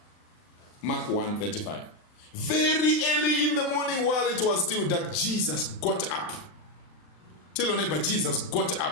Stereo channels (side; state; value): right; late; 39 ms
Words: Mark 1:35. Very early in the morning, while it was still dark, Jesus got up. Tell your neighbor, Jesus got